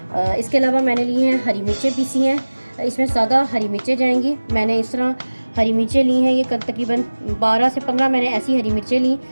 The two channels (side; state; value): both; inverted; correlation -1.00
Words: इसके अलावा मैंने ली हैं हरी मिर्चें पीसी हैं, इसमें ज़्यादा हरी मिर्चें जाएंगी। मैंने इस तरह हरी मिर्चें ली हैं, ये तकरीबन 12 से 15 मैंने ऐसी हरी मिर्चें